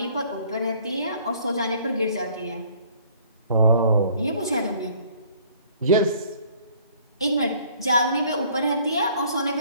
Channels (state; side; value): inverted; both; correlation -0.58